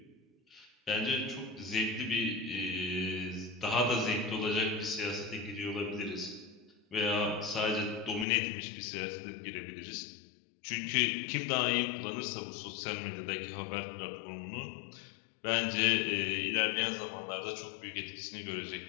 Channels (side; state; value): right; drops out; at 8.2 s